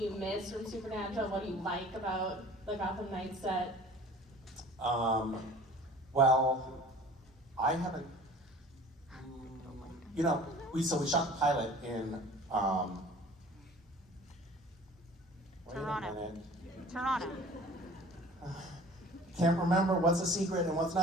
you miss from Supernatural? What do you like about the Gotham Knights set? Well, I haven't. We shot the pilot in. Wait Toronto. a minute. Toronto. Can't remember what's a secret and what's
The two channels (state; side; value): normal; both; correlation 0.45